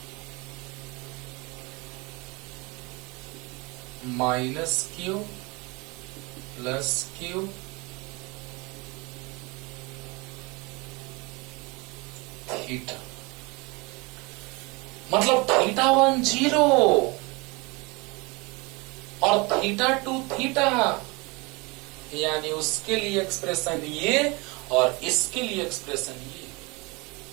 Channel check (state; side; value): quieter; left; 26.5 dB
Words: minus Q plus Q theta, मतलब थीटा 1 0 और थीटा 2 थीटा, यानी उसके लिए एक्सप्रेशन ये और इसके लिए एक्सप्रेशन ये।